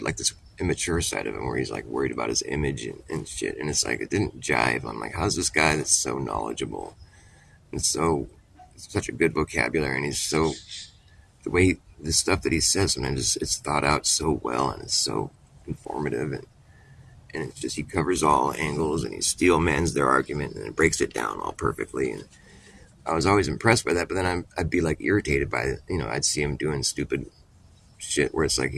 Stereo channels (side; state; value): both; identical; correlation 1.00